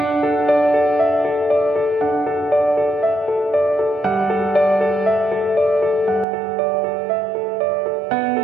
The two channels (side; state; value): left; drops out; at 6.2 s